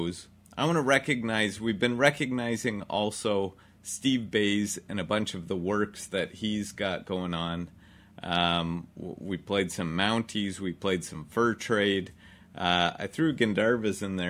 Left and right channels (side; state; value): both; identical; correlation 1.00